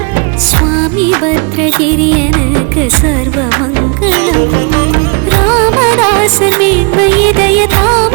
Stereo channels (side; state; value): left; quieter; 33.9 dB